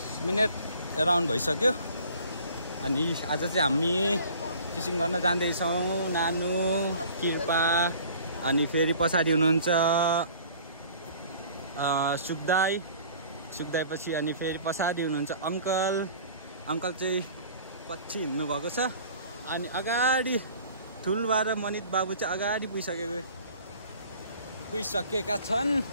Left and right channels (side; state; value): both; inverted; correlation -0.49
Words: मिनेट अराउन्ड भइसक्यो। अनि आज चाहिँ हामी फिशिङ गर्न जाँदैछौँ। नानु, कृपा अनि फेरि पछाडि हुनुहुन्छ सुखदाई पछि अनि फेरि पछाडि हुनुहुन्छ अङ्कल चाहिँ पछि हिँड्नु भएको छ। अनि अगाडि ठुलबा र मनित बाबु चाहिँ अगाडि पुगिसकेका